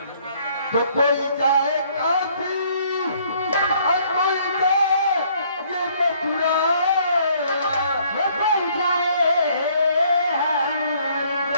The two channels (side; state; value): both; inverted; correlation -0.63